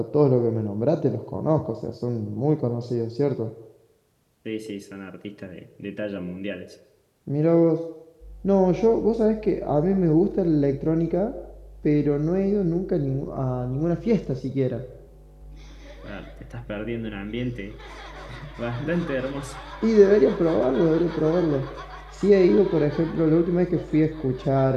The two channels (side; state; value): both; identical; correlation 1.00